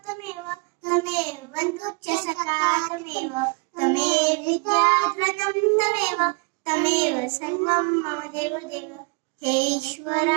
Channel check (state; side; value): quieter; left; 31.8 dB